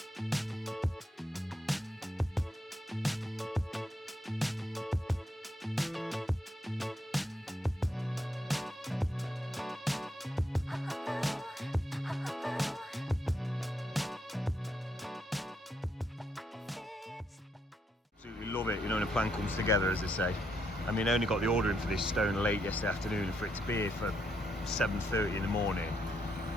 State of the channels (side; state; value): both; normal; correlation 0.77